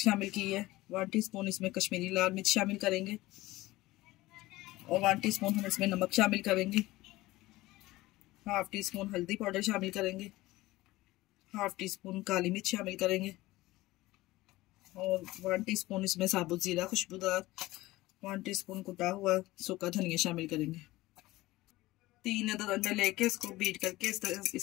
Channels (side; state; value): right; quieter; 18.5 dB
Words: शामिल की है। 1 टीस्पून इसमें कश्मीरी लाल मिर्च शामिल करेंगे और 1 टीस्पून हम इसमें नमक शामिल करेंगे। 1/2 टीस्पून हल्दी पाउडर शामिल करेंगे। 1/2 टीस्पून काली मिर्च शामिल करेंगे और 1 टीस्पून इसमें साबुत जीरा खुशबूदार, 1 टीस्पून कुटा हुआ सूखा धनिया शामिल करेंगे। 3 अदद अंडे लेके इसको बीट करके इस तरह